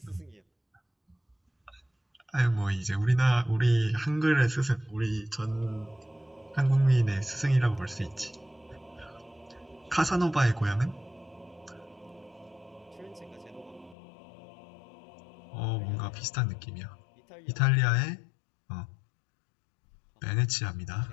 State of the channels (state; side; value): drops out; right; at 14.0 s